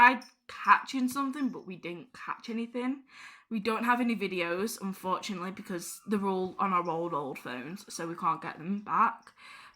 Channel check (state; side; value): identical; both; correlation 1.00